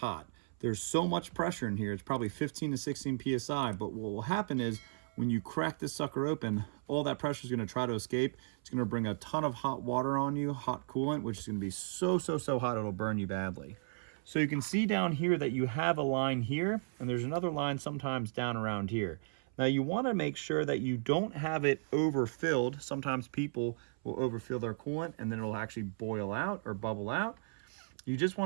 There's so much pressure in here, it's probably 15 to 16 PSI, but what will happen is when you crack this sucker open, all that pressure is gonna try to escape. It's gonna bring a ton of hot water on you, hot coolant, which is gonna be so hot it'll burn you badly. So you can see down here that you have a line here, and there's another line sometimes down around here. Now you wanna make sure that you don't have it overfilled. Sometimes people will overfill their coolant and then it'll actually boil out or bubble out. You just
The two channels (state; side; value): silent; left; 54 dB below the other